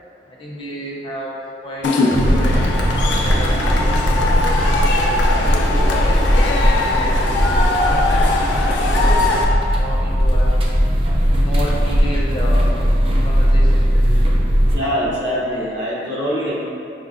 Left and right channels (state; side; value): normal; both; correlation 0.78